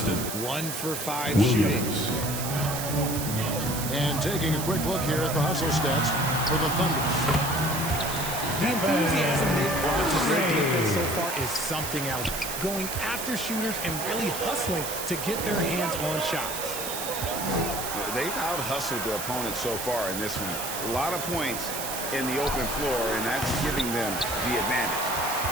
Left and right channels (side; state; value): right; noise; hiss, 5 dB below the sound